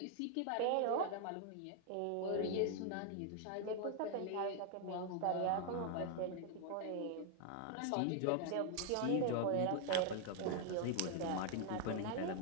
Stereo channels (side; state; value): both; different; correlation 0.00